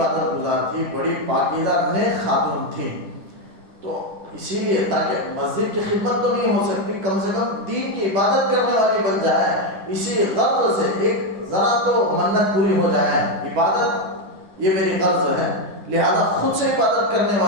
گزار تھی, بڑی پاکیزہ نیک خاتون تھی. تو اسی لیے تاکہ مسجد کی خدمت تو نہیں ہو سکتی, کم سے کم دین کی عبادت کرنے والی بن جائے, اسی غرض سے ایک ذرا تو منت پوری ہو جائے. عبادت یہ میری غرض ہے, لہذا خود سے عبادت کرنے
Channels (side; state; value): left; late; 10 ms